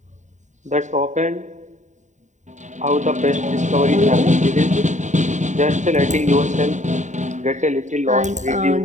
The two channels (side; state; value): left; late; 0.35 ms